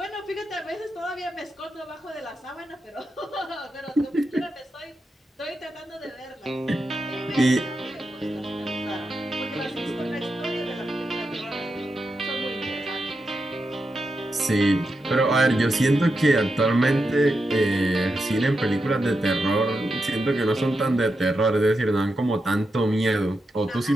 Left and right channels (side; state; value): both; normal; correlation 0.87